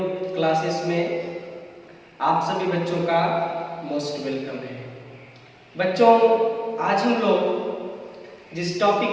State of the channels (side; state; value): both; identical; correlation 1.00